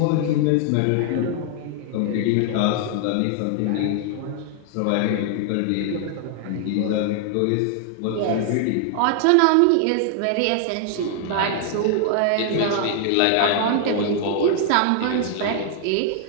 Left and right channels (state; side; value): different; both; correlation 0.00